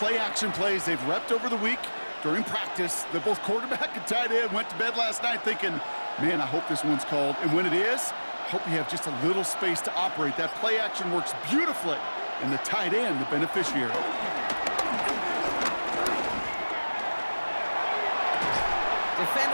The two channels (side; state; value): both; inverted; correlation -1.00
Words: plays they've repped over the week during practice. That both quarterback and tight end went to bed last night thinking, man, I hope this one's called. And when it is, I hope you have just a little space to operate. That play-action works beautifully. And the tight end, the beneficiary.